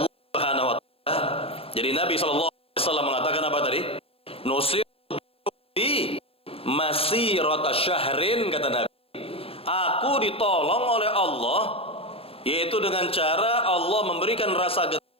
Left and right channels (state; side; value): late; right; 0.28 ms